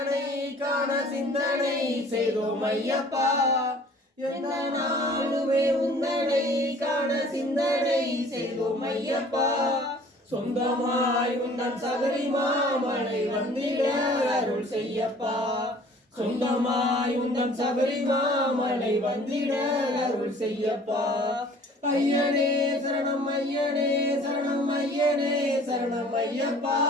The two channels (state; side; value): normal; both; correlation 0.51